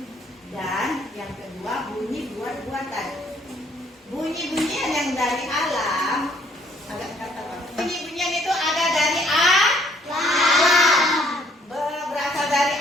dan yang kedua bunyi buat-buatan. Bunyi-bunyian yang dari alam, bunyi-bunyian itu ada dari alam. Berasal dari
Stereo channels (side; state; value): both; normal; correlation 0.63